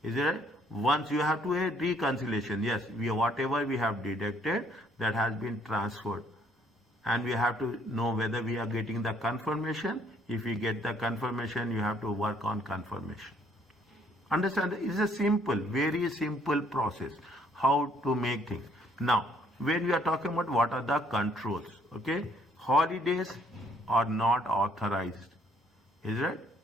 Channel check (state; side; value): normal; both; correlation 0.65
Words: Is it right? Once you have to a reconciliation, yes, whatever we have deducted, that has been transferred. And we have to know whether we are getting the confirmation. If we get the confirmation, you have to work on confirmation. Understand? It's a simple, very simple process how to make things. Now, when we are talking about what are the controls, okay, holidays are not authorized. Is it?